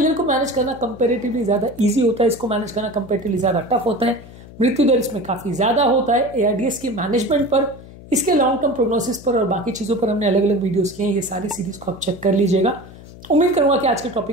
को मैनेज करना कंपेरेटिवली ज्यादा इजी होता है, इसको मैनेज करना कंपेरेटिवली ज्यादा टफ होता है, मृत्यु दर इसमें काफी ज्यादा होता है। एआरडीएस के मैनेजमेंट पर, इसके लॉन्ग टर्म प्रोग्नोसिस पर और बाकी चीजों पर हमने अलग अलग वीडियोस किए हैं, ये सारी सीरीज को आप चेक कर लीजिएगा। उम्मीद करूंगा कि आज के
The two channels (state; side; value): noise; left; hum, 18 dB below the sound